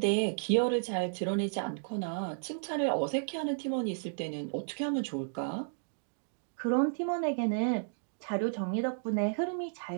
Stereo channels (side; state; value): left; silent; digital silence